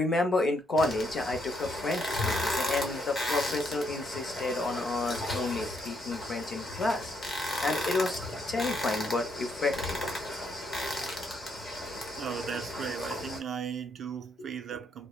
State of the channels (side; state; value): both; normal; correlation 0.74